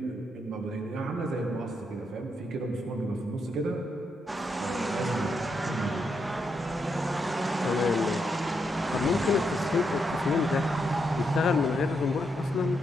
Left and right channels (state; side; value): normal; both; correlation 0.81